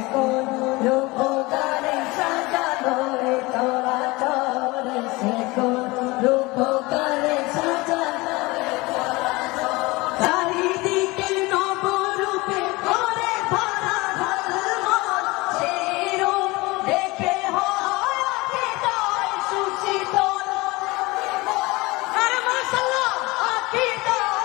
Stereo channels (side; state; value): right; quieter; 22.9 dB